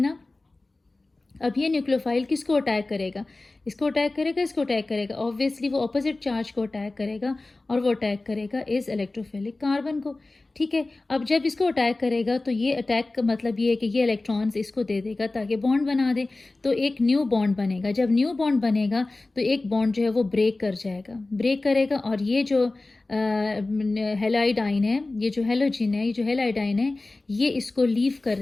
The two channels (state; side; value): quieter; right; 3.1 dB